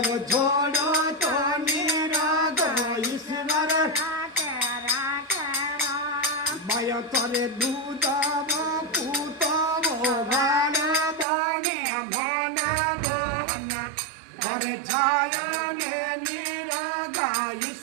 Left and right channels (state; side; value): drops out; left; at 11.2 s